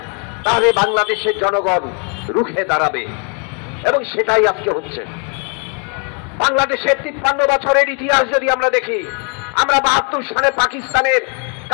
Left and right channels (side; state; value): right; quieter; 40.0 dB